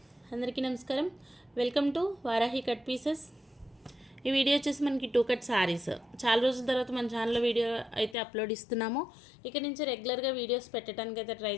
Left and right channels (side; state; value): right; drops out; at 8.2 s